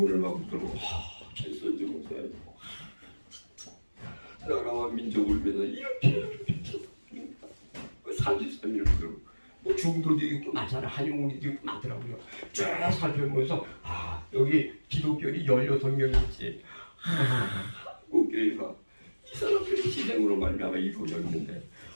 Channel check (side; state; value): both; inverted; correlation -1.00